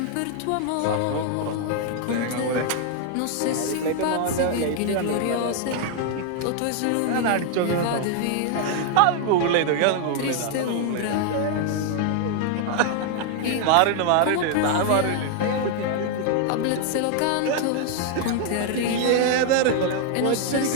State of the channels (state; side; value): different; both; correlation 0.00